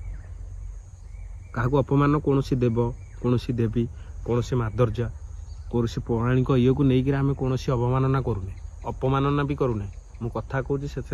क्या अपमान कौन देव कौन देवी कौन माधुर्य कौन पौराणिक ये को लेकिन आम कौन अवमानना करूने अपमानना भी करूने मु कथा कहूँ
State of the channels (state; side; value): identical; both; correlation 1.00